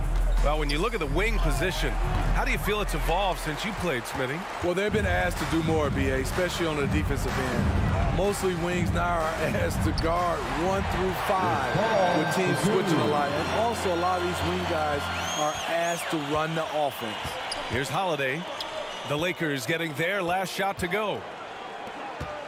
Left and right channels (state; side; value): identical; both; correlation 1.00